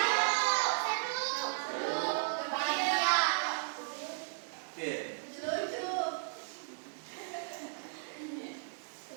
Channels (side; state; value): left; silent; digital silence